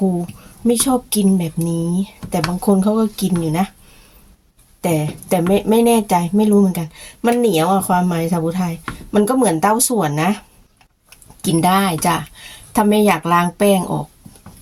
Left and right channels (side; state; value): both; identical; correlation 1.00